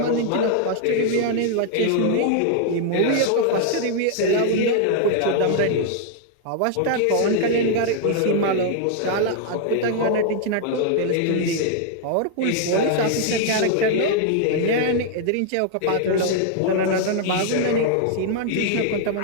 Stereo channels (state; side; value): different; both; correlation 0.00